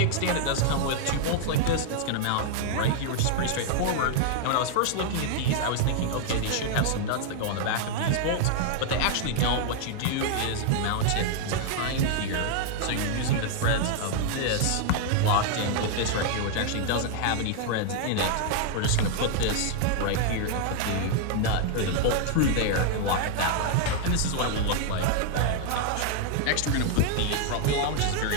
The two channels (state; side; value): different; both; correlation -0.01